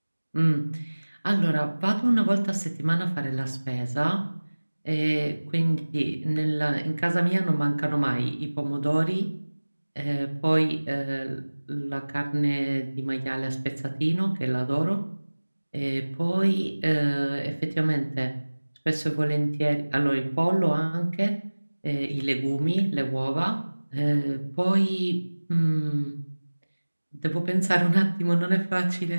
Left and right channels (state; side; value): inverted; both; correlation -1.00